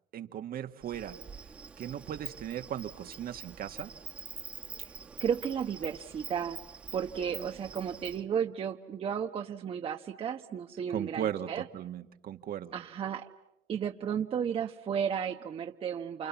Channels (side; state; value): left; quieter; 7.8 dB